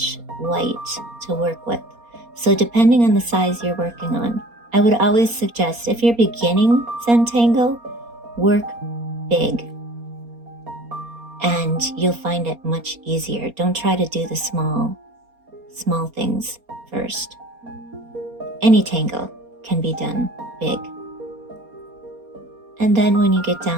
white to work with. So depending on the size you're working on, I would always suggest, if you're beginning Zentangle, work big. And you'll find it much easier. Don't try to do the small things first. Any tangle can be done big. And then when you get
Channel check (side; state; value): left; late; 4.3 ms